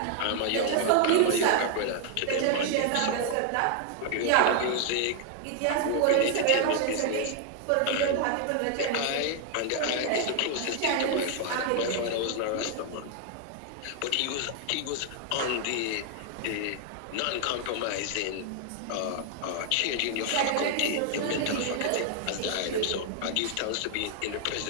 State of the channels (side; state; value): both; different; correlation 0.00